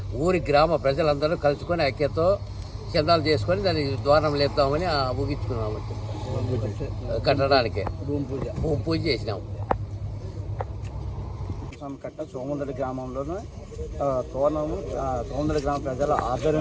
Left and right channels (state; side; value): identical; both; correlation 1.00